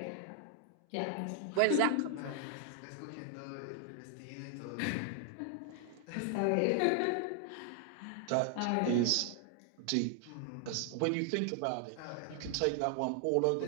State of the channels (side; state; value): both; different; correlation 0.00